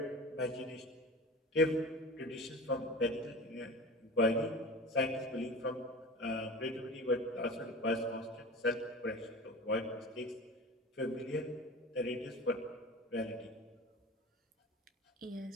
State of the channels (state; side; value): normal; both; correlation 0.35